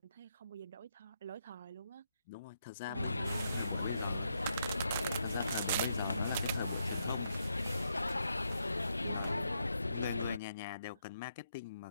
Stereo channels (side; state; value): both; inverted; correlation -0.79